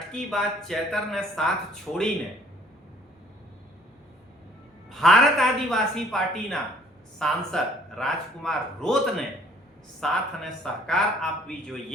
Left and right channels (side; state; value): both; normal; correlation 0.58